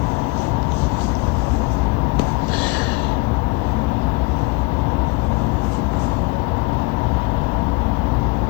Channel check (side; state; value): right; quieter; 25.3 dB